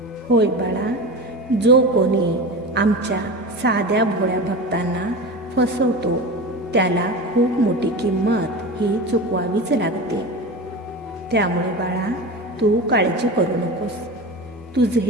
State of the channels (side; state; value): both; normal; correlation 0.28